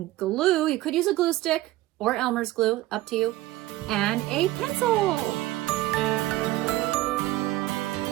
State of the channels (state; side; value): quieter; left; 16.8 dB